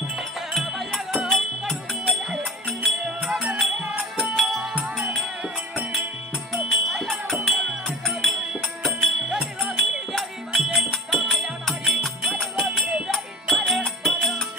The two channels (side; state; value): both; normal; correlation 0.37